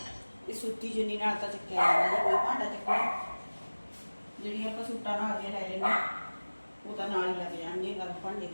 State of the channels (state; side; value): inverted; both; correlation -1.00